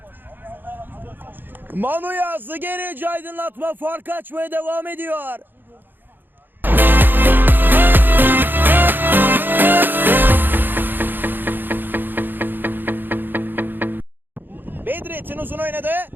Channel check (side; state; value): left; late; 0.093 ms